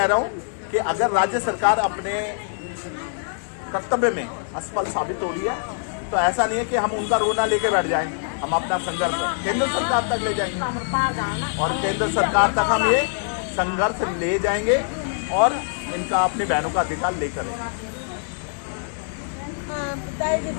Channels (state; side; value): silent; right; 61 dB below the other